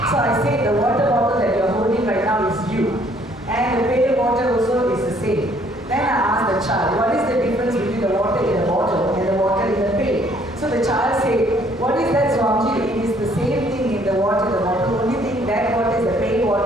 So I say the water bottle that you're holding right now is you, and the pail of water also is the same. Then I ask the child, what is the difference between the water in the bottle and the water in the pail? So the child say, what is that, Swamiji? It is the same thing in the water, the bottle. Only thing that water is the pail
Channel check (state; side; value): normal; both; correlation 0.63